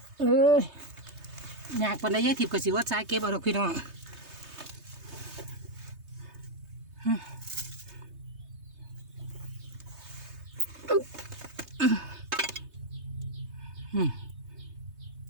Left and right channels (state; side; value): late; left; 3.3 ms